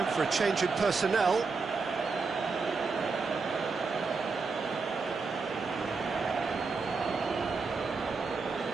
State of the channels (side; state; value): left; quieter; 4.5 dB